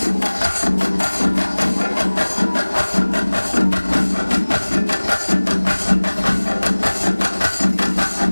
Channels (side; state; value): both; inverted; correlation -1.00